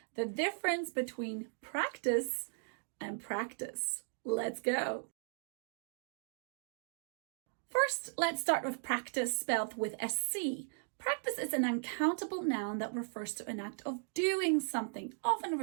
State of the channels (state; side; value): silent; left; digital silence